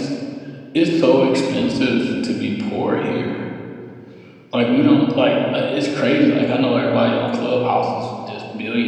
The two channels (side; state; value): both; identical; correlation 1.00